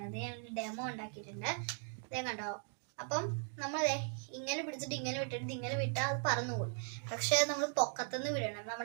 ഞാൻ ഡെമോ ഉണ്ടാക്കിയിട്ടുണ്ട്, അതേ കണ്ടോ. അപ്പം നമ്മൾ ഇങ്ങനെ പിടിച്ചിട്ട് ഇങ്ങനെ വിട്ടിട്ട് ഇങ്ങനെ വിട്ടാൽ അത് പറന്നു പോകും. പക്ഷെ നമ്മൾ പൊക്കത്തുനിന്ന് വിടണം.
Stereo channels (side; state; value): left; silent; 52 dB below the other